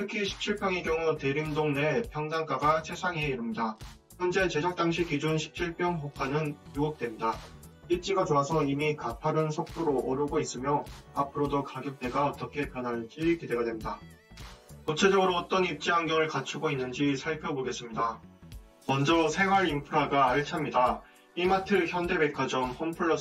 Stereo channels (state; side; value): identical; both; correlation 1.00